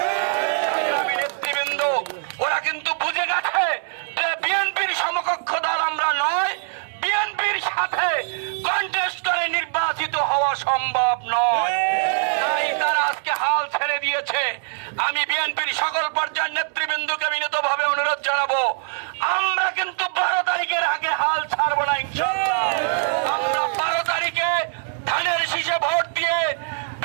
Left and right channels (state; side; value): silent; left; digital silence